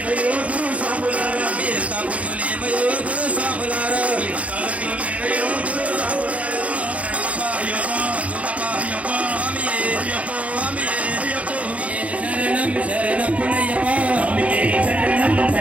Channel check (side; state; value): left; late; 0.066 ms